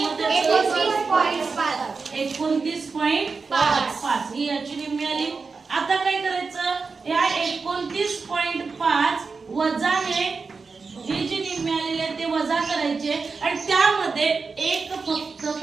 29.5 ही याची निम्मी आली. आता काय करायचं? या 29.5 वजाने ही जी निम्मी आलेली आहे ते वजा करायचे आणि त्यामध्ये एक फक्त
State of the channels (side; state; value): left; quieter; 4.6 dB